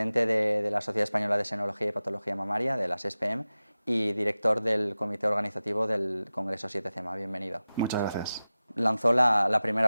de la Sociedad Española de Senología y Patología Mamaria, de la SESPM, y director del comité organizativo del Congreso 7CEMA. Bienvenido. Muchas gracias. Lanzó la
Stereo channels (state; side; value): inverted; both; correlation -0.95